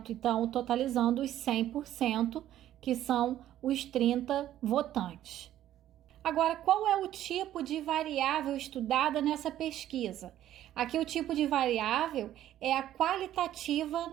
Então totalizando os 100%, que são os 30 votantes. Agora, qual é o tipo de variável estudada nessa pesquisa? Aqui o tipo de variável é a qualitativa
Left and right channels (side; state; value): left; quieter; 12.4 dB